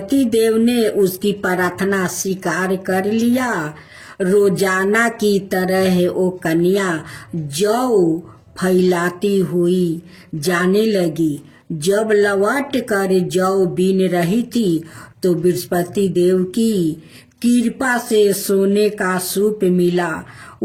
देव ने उसकी प्रार्थना स्वीकार कर लिया। रोजाना की तरह वो कन्या जौ फैलाती हुई जाने लगी। जब लौट कर जौ बीन रही थी तो बृहस्पति देव की कृपा से सोने का सूप मिला।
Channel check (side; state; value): both; identical; correlation 1.00